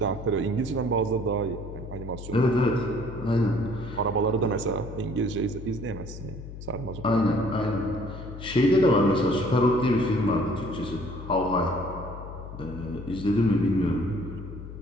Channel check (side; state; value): left; noise; hum, 11 dB below the sound